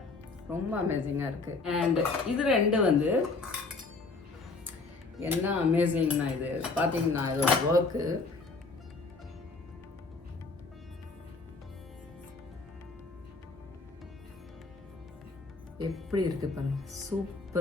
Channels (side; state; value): right; quieter; 3.9 dB